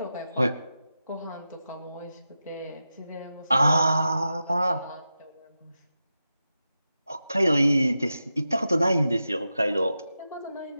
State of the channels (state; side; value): inverted; both; correlation -0.91